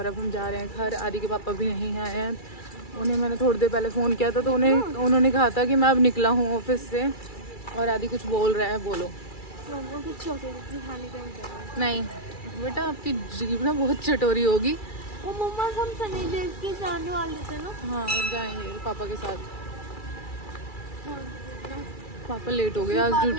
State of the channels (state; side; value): late; right; 2.3 ms